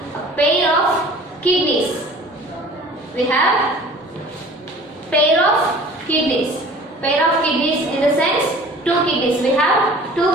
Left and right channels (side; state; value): both; normal; correlation 0.46